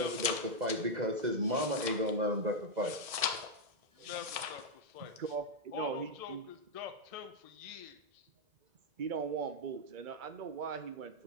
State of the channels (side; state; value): left; late; 1.7 ms